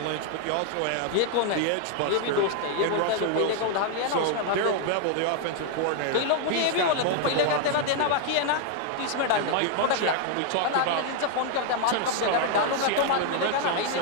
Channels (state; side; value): different; both; correlation 0.00